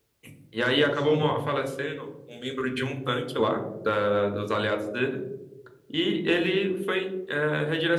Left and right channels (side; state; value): both; identical; correlation 1.00